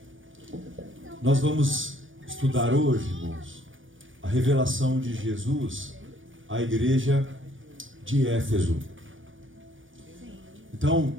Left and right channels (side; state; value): left; late; 0.57 ms